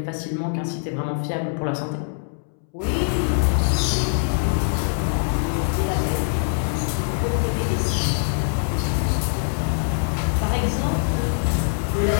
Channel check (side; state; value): right; silent; 63 dB below the other